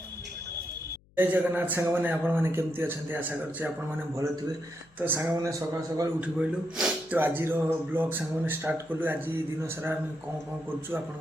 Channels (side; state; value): left; noise; hum, 30 dB below the sound